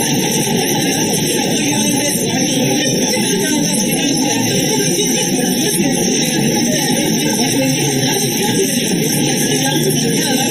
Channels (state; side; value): identical; both; correlation 1.00